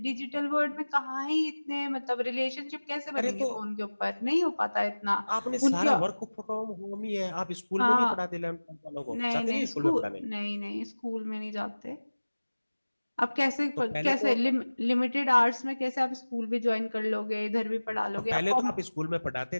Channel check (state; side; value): inverted; both; correlation -1.00